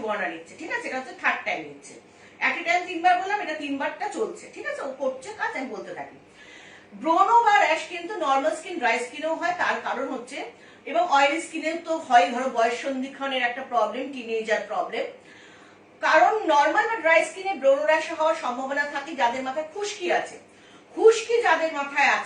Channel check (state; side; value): identical; both; correlation 1.00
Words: আনা নিচ্ছে, ঠিক আছে? এটা হচ্ছে থার্ড টাইম নিচ্ছে। এট এ টাইম 3 বার বললাম, এটা 3 বারটা চলছে, ঠিক আছে? ও করছে কাজ, আমি বলতে থাকি। ব্রণ বা র্যাশ কিন্তু নর্মাল স্কিন, ড্রাই স্কিনেও হয়। তার কারণ হচ্ছে, এবং অয়েলি স্কিনেও তো হয়, ধরো বয়স সন্ধিক্ষণের একটা প্রবলেম, টিনেজার প্রবলেম। কারণ নর্মাল বা ড্রাই স্কিনে ব্রণ র্যাশ হওয়ার সম্ভাবনা থাকে যাদের মাথায় খুশকি আছে। খুশকি যাদের মাথায়